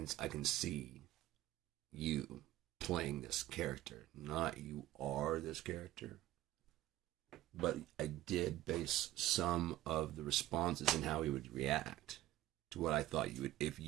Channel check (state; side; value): quieter; left; 15.0 dB